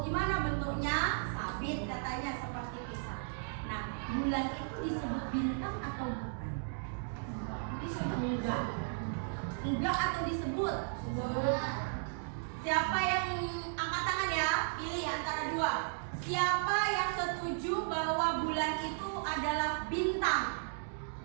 gimana bentuknya? Sabit katanya, seperti pisau. Nah, bulan itu disebut bintang atau bukan? Disebut enggak. Enggak atau disebut? Siapa yang angkat tangan ya? Pilih antara dua. Siapa yang setuju bahwa bulan itu adalah bintang?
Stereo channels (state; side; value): silent; left; digital silence